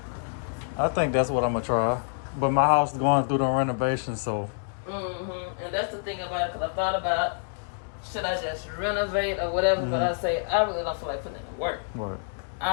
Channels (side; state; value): right; silent; digital silence